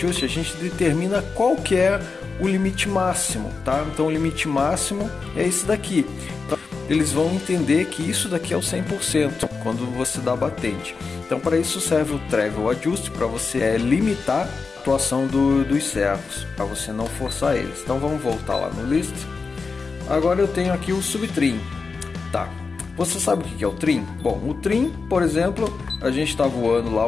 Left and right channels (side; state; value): right; quieter; 4.6 dB